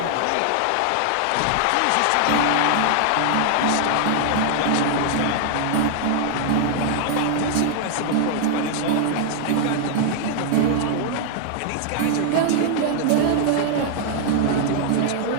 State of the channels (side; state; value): both; different; correlation 0.00